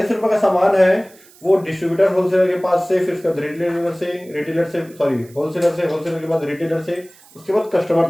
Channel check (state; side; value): noise; right; hiss, 26 dB below the sound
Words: रुपए का सामान है वो डिस्ट्रीब्यूटर होलसेलर के पास से, फिर उसके बाद रिटेलर से सॉरी होलसेलर के बाद रिटेलर से, उसके बाद कस्टमर